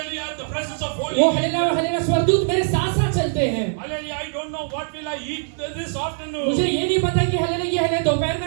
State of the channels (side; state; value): left; silent; 64 dB below the other